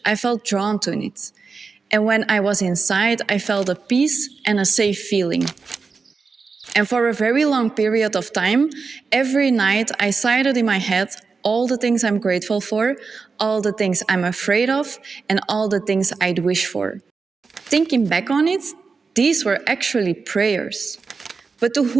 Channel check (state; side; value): quieter; left; 4.7 dB